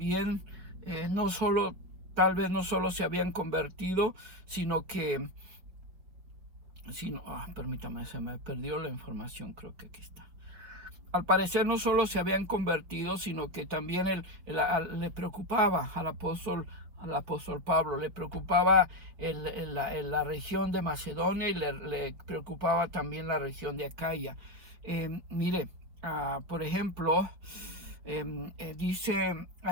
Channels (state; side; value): late; left; 5.1 ms